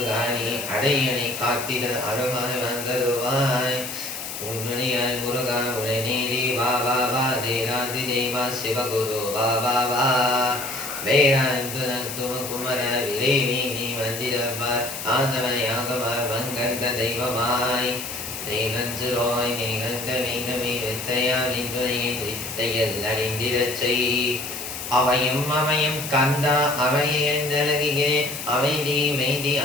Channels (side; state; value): left; noise; hiss, 8 dB below the sound